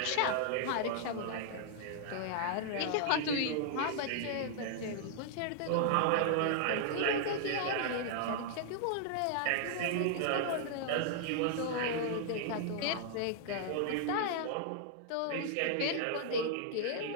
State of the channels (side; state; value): both; different; correlation -0.01